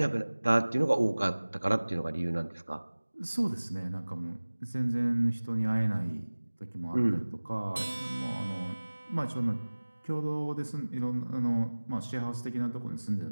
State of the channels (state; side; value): inverted; both; correlation -1.00